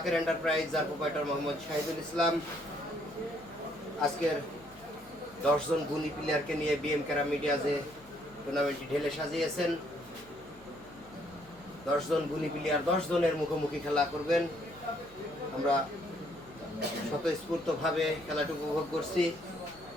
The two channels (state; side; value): noise; left; hum, 25 dB below the sound